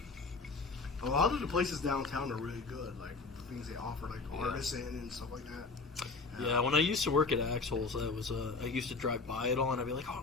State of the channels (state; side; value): quieter; right; 4.1 dB